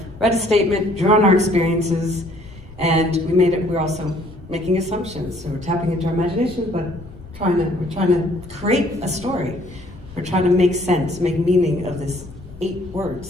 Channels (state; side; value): noise; left; rumble, 18 dB below the sound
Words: read a statement, drew on our experiences, and we're also making assumptions. So we're tapping into our imagination, but we're trying to create a story. We're trying to make sense, make meaning of this 8